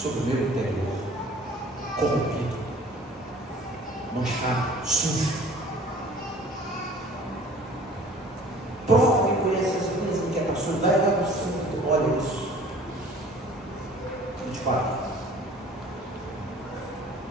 o meu interior, corrompido, manchado, sujo, prova e conhece as minhas inquietações, vai lá no fundo, olha isso. 24.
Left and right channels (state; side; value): normal; both; correlation 0.49